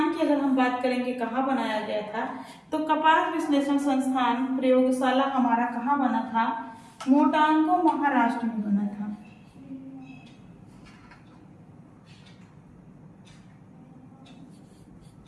की अगर हम बात करेंगे कहाँ बनाया गया था, तो कपास विश्लेषण संस्थान प्रयोगशाला हमारा कहाँ बना था, मोटांगू महाराष्ट्र में बना था।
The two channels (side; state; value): both; identical; correlation 1.00